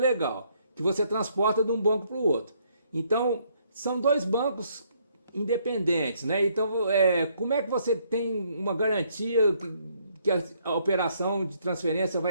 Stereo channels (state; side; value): inverted; both; correlation -0.69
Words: que você transporta de um banco para o outro. Então, são dois bancos independentes, né? Então, como é que você tem uma garantia que a operação de transferência